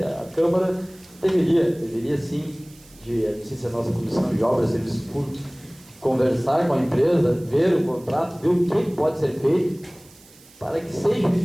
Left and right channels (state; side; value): noise; right; hiss, 25 dB below the sound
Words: a Câmara deveria sim, não sei se a nossa Comissão de Obras e Serviços Públicos, conversar com a empresa, ver o contrato, ver o que pode ser feito para que seja